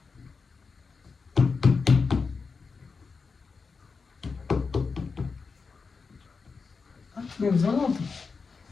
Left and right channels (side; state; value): right; quieter; 4.9 dB